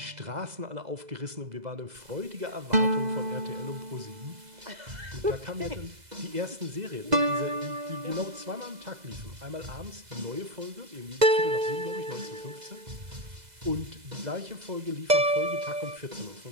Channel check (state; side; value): late; left; 2.0 ms